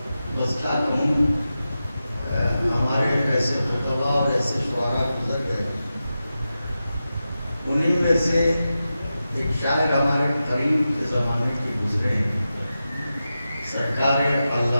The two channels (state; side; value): inverted; both; correlation -0.92